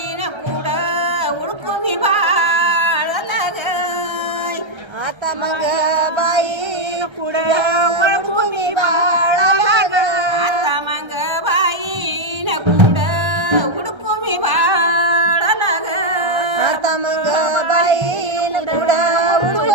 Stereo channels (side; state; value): left; late; 1.3 ms